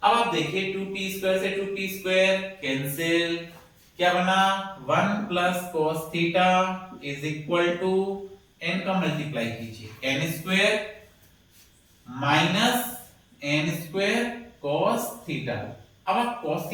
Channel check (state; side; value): identical; both; correlation 1.00